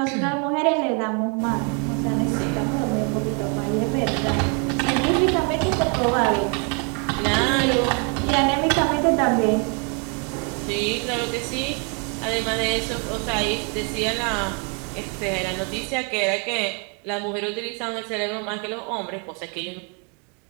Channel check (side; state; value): left; quieter; 36.4 dB